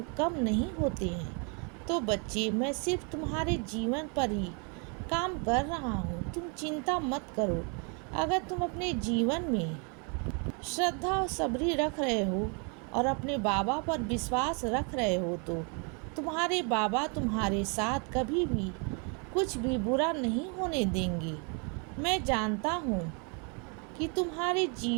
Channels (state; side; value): quieter; left; 35.9 dB